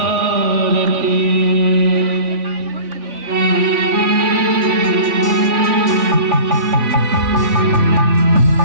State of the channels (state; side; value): late; left; 3.5 ms